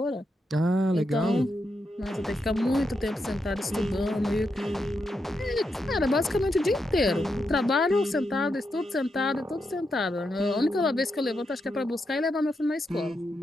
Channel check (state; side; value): normal; both; correlation 0.84